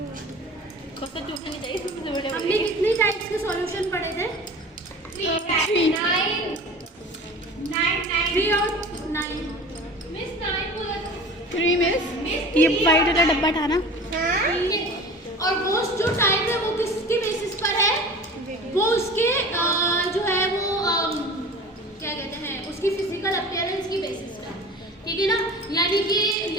हमने कितने टाइप्स के सॉल्यूशन पढ़े थे? 3 और 9। मिस 9 बोला था। 3 मिस ये वाइट वाला डब्बा था ना। और वो जो टाइप है वो किसके बेसिस पर है? वो उसके जो है वो क्या कहते हैं, उसकी फिजिकल अपीयरेंस की बेसिस पर। ठीक है ना, यानी कि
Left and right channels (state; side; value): normal; both; correlation 0.39